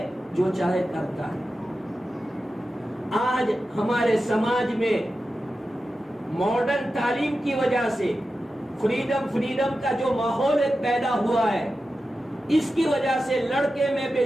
جو چاہے کرتا ہے. آج ہمارے سماج میں ماڈرن تعلیم کی وجہ سے فریڈم کا جو ماحول پیدا ہوا ہے، اس کی وجہ سے لڑکے میں بے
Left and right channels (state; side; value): normal; both; correlation 0.92